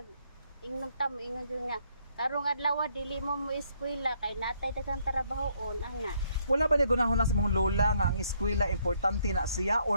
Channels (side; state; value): both; inverted; correlation -0.70